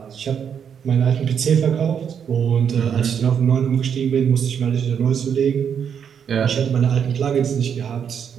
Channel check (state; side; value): quieter; left; 7.7 dB